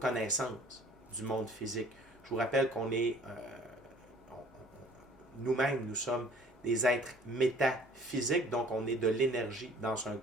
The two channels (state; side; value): normal; both; correlation 0.53